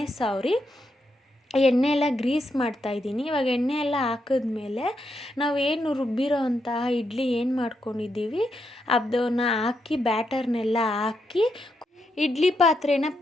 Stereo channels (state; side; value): normal; both; correlation 0.82